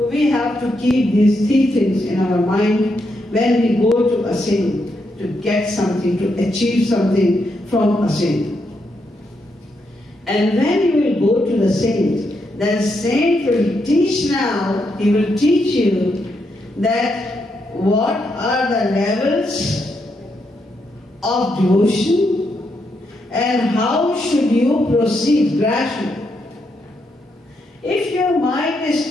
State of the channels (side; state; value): both; normal; correlation 0.80